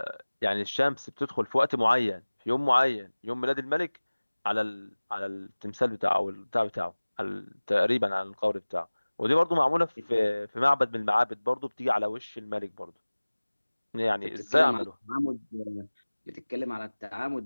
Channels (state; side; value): inverted; both; correlation -1.00